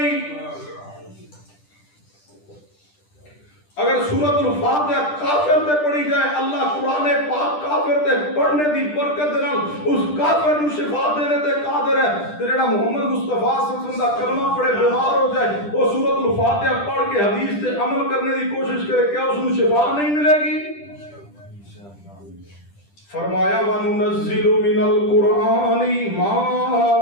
اگر سورۃ الفاتحہ کافر تے پڑھی جائے، اللہ قرآن پاک کافر تے پڑھنے دی برکت دے نال اس کافر نو شفا دینے تے قادر ہے۔ تے جڑا محمد مصطفیٰ صلی اللہ علیہ وسلم دا کلمہ پڑھے بیمار ہو جائے، وہ سورۃ الفاتحہ پڑھ کے حدیث تے عمل کرنے دی کوشش کرے، کیا اس نو شفا نہیں ملے گی؟ فرمایا وَنُنَزِّلُ مِنَ الْقُرْآنِ مَا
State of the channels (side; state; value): right; late; 10 ms